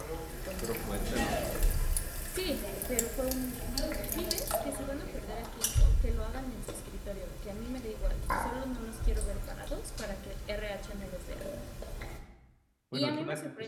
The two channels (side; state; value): both; identical; correlation 1.00